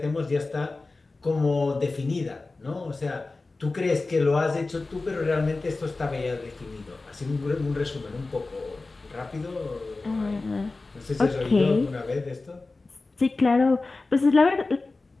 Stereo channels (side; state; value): right; quieter; 3.5 dB